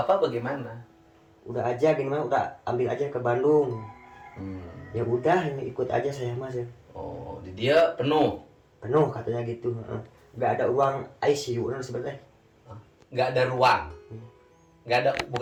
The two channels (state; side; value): identical; both; correlation 1.00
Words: bagaimana? Udah aja gini mah udah ambil aja ke Bandung. Ya udah ini ikut aja saya mas ya. Oh, di dia penuh, Penuh katanya gitu. Nggak ada ruang ICU sebenarnya. nggak ada ruang,